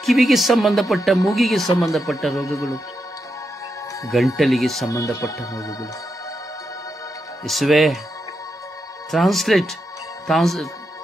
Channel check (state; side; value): normal; both; correlation 0.85